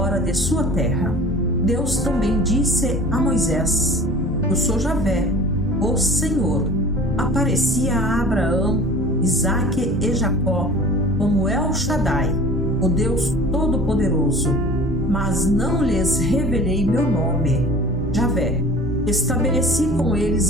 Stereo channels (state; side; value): normal; both; correlation 0.43